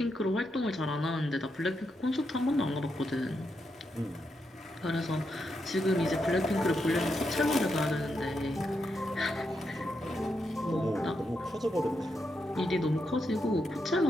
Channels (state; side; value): normal; both; correlation 0.83